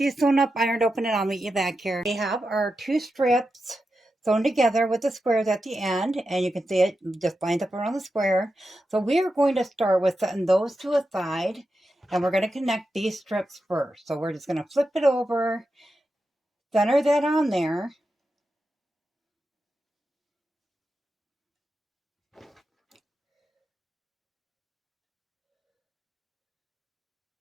sewn up, ironed open, and I'll meet you back here. We have our two strips sewn together with the squares at the end, and you can see it just lines up around the square. So we are going to start with setting those to a side, and we're going to connect these strips first. So we're just going to flip it over, center that on there.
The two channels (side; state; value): both; normal; correlation 0.89